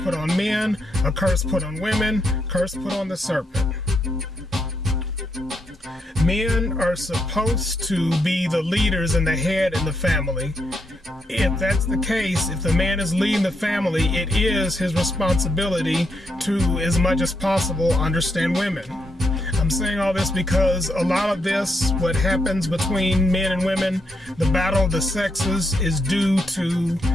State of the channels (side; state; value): both; normal; correlation 0.79